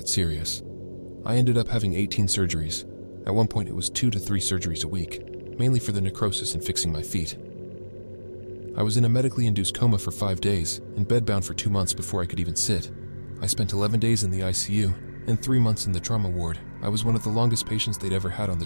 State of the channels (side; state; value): both; inverted; correlation -1.00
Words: serious. I ended up having 18 surgeries. At one point it was 2 to 3 surgeries a week, mainly for the necrosis and fixing my feet. I was in a medically induced coma for 5 days and bedbound for 2 months before I could even sit. I spent 11 days in the ICU and 3 months in the trauma ward. I was one of the longest patients they'd ever had on the